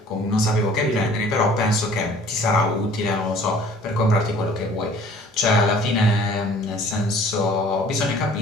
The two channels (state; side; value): normal; both; correlation 0.52